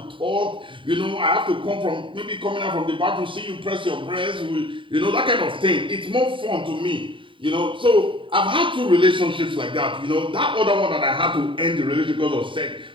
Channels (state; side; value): late; left; 0.25 ms